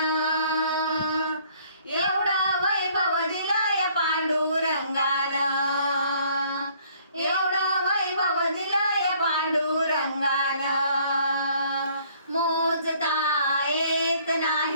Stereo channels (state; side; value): inverted; both; correlation -0.61